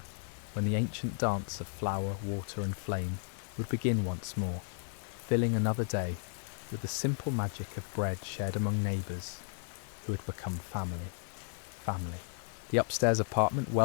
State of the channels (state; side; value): silent; right; 55 dB below the other